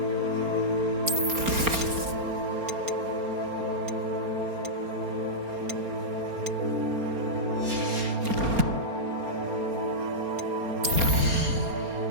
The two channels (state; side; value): late; left; 4.3 ms